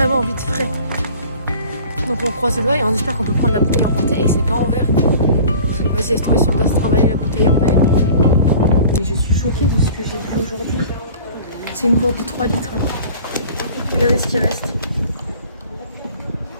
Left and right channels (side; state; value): both; inverted; correlation -0.45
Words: envie de frais. Donc on croise les doigts et on espère qu'on peut prendre la bouteille emportée et que c'est pas en verre. Vas-y, laisse tomber si on doit se travailler la bouteille en verre. Et je suis choquée de ce que j'ai vu aujourd'hui. C'est une gourde de 3 litres. Regardez ce qui reste.